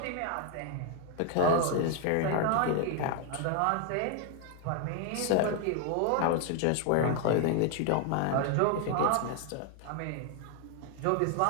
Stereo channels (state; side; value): different; both; correlation 0.00